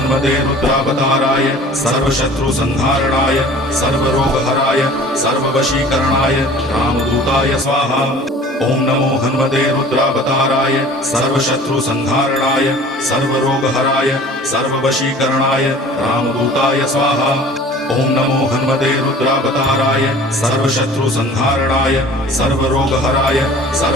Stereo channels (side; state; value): both; normal; correlation 0.46